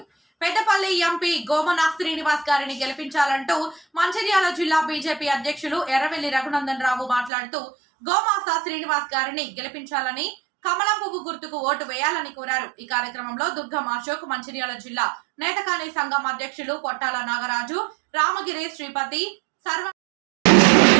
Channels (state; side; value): drops out; left; at 7.3 s